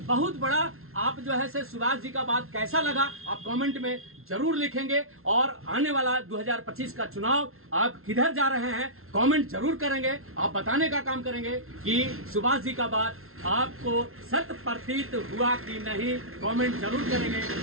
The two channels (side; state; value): left; late; 0.62 ms